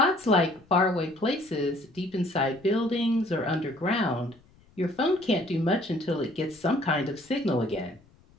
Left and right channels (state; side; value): noise; left; rumble, 29 dB below the sound